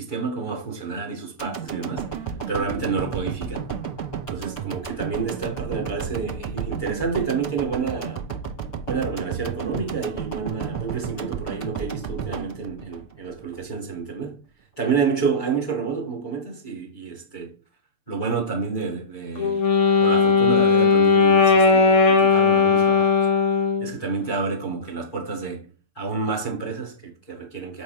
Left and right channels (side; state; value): right; late; 6.8 ms